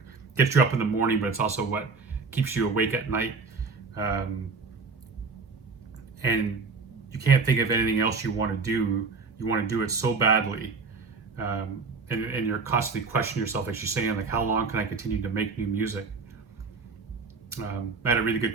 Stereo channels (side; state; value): left; quieter; 4.5 dB